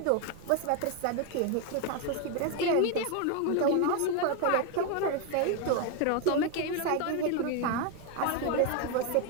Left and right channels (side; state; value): both; different; correlation 0.01